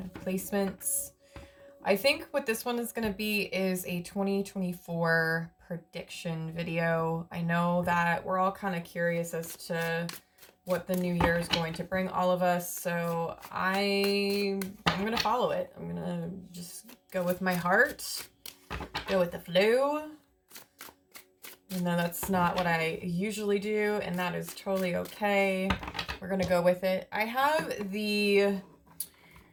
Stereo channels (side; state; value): both; identical; correlation 1.00